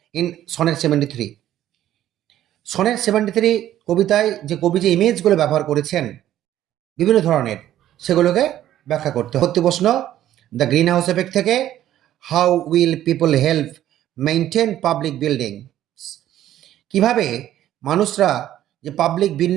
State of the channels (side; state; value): left; quieter; 12.5 dB